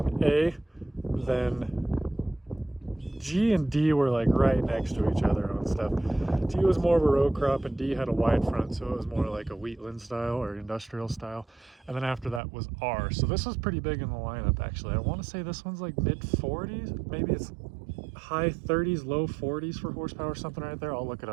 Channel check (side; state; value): left; drops out; at 12.4 s